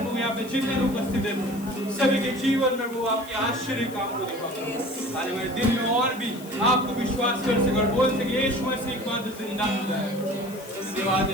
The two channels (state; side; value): noise; left; hiss, 18 dB below the sound